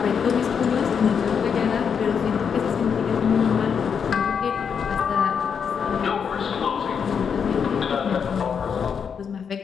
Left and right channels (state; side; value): quieter; right; 6.8 dB